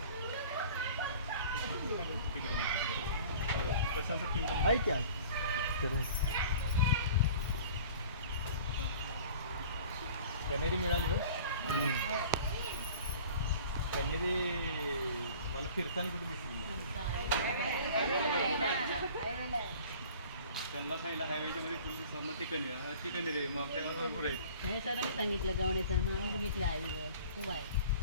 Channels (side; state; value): both; inverted; correlation -0.45